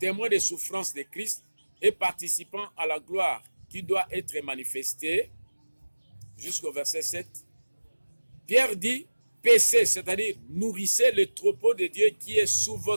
témoin des souffrances de Christ et participant à la gloire qui doit être manifestée, jusqu'au verset 7, Pierre dit, paissez, c'est-à-dire nourrissez le troupeau de Dieu qui est sous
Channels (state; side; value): inverted; both; correlation -1.00